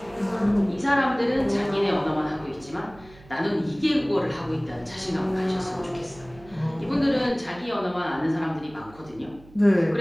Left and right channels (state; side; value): noise; right; hum, 23 dB below the sound